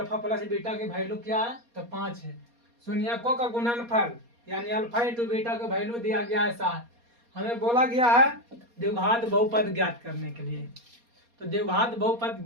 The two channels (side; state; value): left; late; 4.2 ms